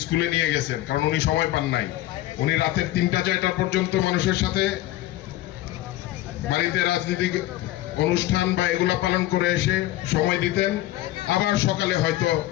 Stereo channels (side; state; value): right; quieter; 15.4 dB